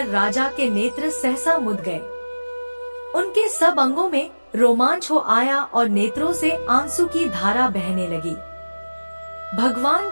राजा के नेत्र सहसा मुद गए। उनके सब अंगों में रोमांच हो आया और नेत्रों से आंसू की धारा बहने लगी। भगवान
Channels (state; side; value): inverted; both; correlation -1.00